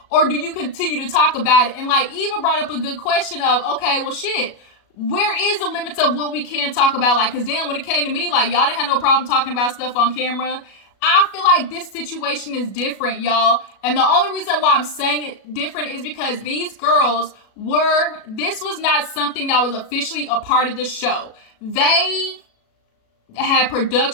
Or do you continue to talk about it? And like, Eva brought up a good question of, okay, well shit, where is the limits of what we can talk about? Like, cause damn, when it came to me, like y'all didn't have no problem talking about stuff on camera. I feel like this situation is different, y'all. And the only reason why I'm saying it different is because these girls this was not something that was officially a part of the show. They had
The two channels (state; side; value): late; right; 37 ms